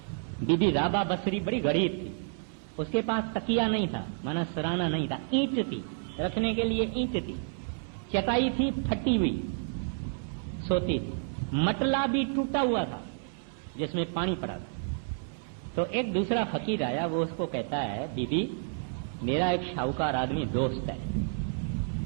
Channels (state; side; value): silent; left; 58 dB below the other